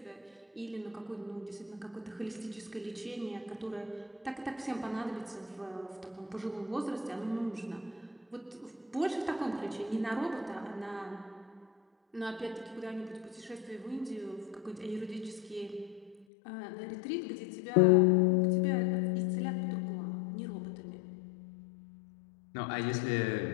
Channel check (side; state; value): right; drops out; at 16.2 s